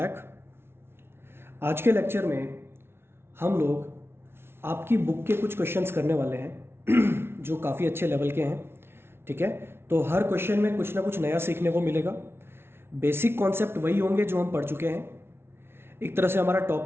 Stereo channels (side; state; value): left; late; 0.12 ms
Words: आज के लेक्चर में हम लोग आपकी बुक के कुछ क्वेश्चंस करने वाले हैं जो काफ़ी अच्छे लेवल के हैं। ठीक है, तो हर क्वेश्चन में कुछ ना कुछ नया सीखने को मिलेगा। बेसिक कॉन्सेप्ट वही होंगे जो हम पढ़ चुके हैं। एक तरह से हमारा